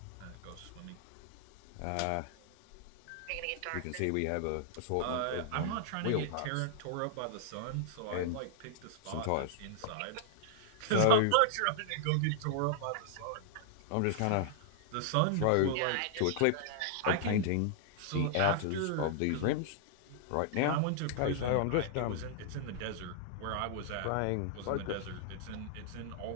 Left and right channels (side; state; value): both; different; correlation -0.01